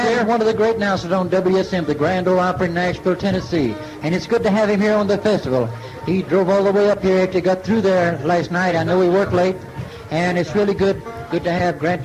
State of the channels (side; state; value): both; identical; correlation 1.00